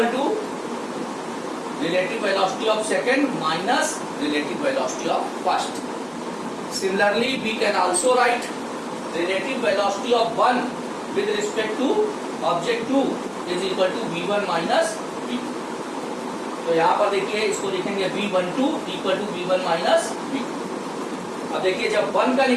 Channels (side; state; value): both; identical; correlation 1.00